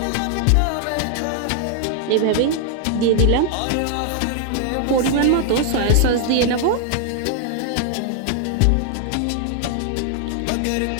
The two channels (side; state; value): both; different; correlation 0.00